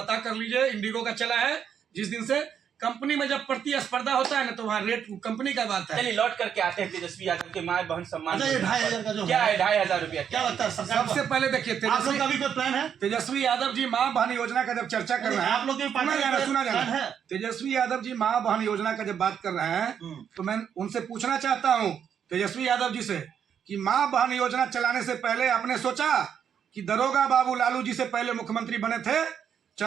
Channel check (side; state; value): left; quieter; 8.2 dB